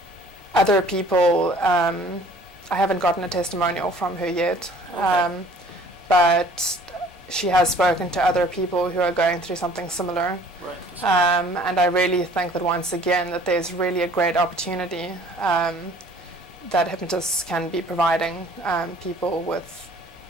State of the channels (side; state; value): both; normal; correlation 0.53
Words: other people, I haven't gotten a testimonial from her yet, but she has spoken to other people who are going through something similar. And I really think that once again that there's really a great opportunity that hypnotists can be providing people with